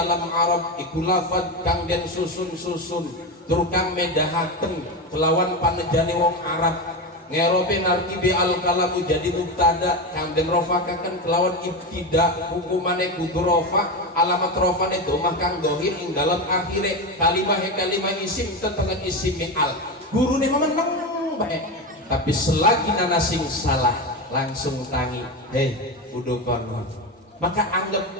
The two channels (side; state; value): both; normal; correlation 0.18